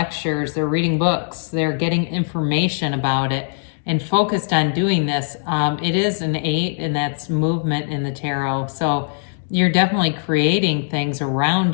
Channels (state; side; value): silent; right; digital silence